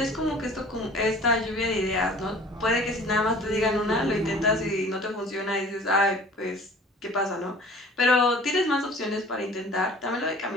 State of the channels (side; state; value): both; normal; correlation 0.47